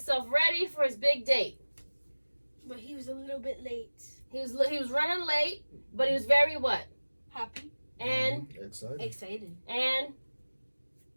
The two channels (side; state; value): both; inverted; correlation -1.00